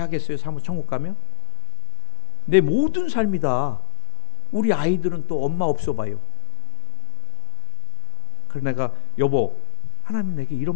사모 천국 가면? 내 모든 삶이 다, 우리 아이들은 또 엄마 없어 봐요. 그래서 내가, 여보, 하나님 내게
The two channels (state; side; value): silent; right; digital silence